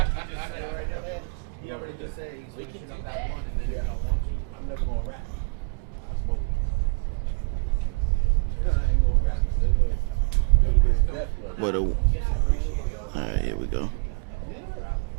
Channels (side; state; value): left; quieter; 35.4 dB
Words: But all right, here we go.